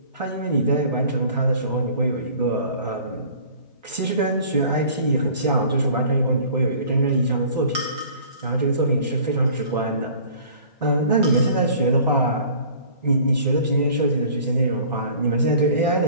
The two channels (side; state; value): both; inverted; correlation -0.48